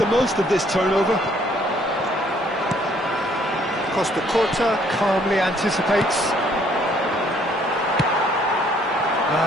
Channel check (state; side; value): normal; both; correlation 0.64